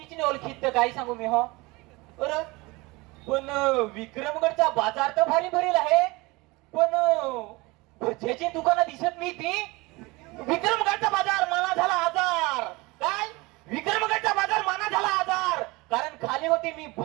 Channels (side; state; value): left; quieter; 23.7 dB